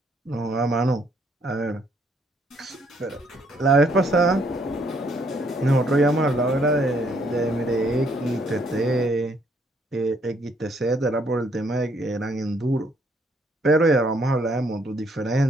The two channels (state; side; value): normal; both; correlation 0.68